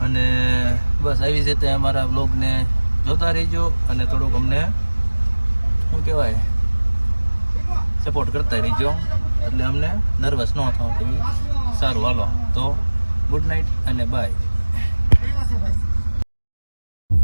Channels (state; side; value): inverted; both; correlation -1.00